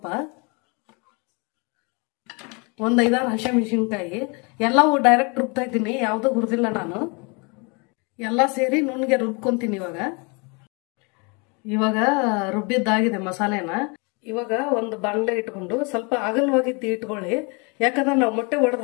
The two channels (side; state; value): right; quieter; 31.5 dB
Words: 1-5-6 ಹಸಿಮೆಣಸಿನಕಾಯಿ. ಎಲ್ಲವೂ ಡೈರೆಕ್ಟ್ ರುಬ್ತಾ ಇದ್ದೀನಿ, ಯಾವುದೂ ಹುರಿದಿಲ್ಲ ನಾನು. ಎಲ್ಲ ಸೇರಿ ನುಣ್ಣಗೆ ರುಬ್ಕೊಂತೀನಿ. ಇವಾಗ ರುಬ್ಬಿದ್ದಾಗಿದೆ ಮಸಾಲೆನ. ಇವಾಗ ಒಂದು ಬಾಣಲೆ ಇಟ್ಕೊಂಡು ಸ್ವಲ್ಪ ಅಗಲವಾಗಿ ಇಟ್ಕೊಳ್ಳಿ. ಯಾಕಂದ್ರೆ ನಾವು ಮೊಟ್ಟೆ